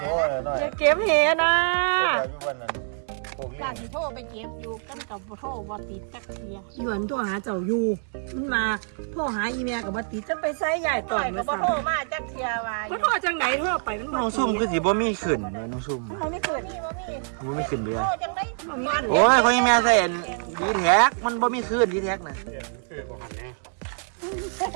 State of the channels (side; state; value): left; silent; 61 dB below the other